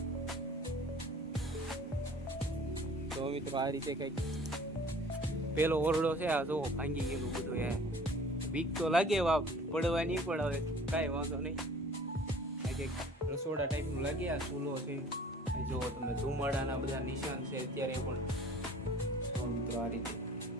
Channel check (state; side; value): normal; both; correlation 0.49